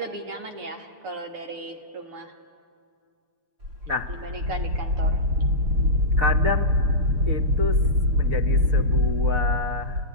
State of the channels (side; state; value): left; late; 6.7 ms